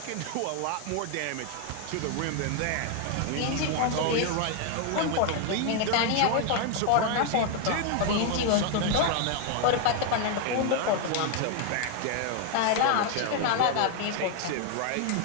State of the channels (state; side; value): different; both; correlation 0.01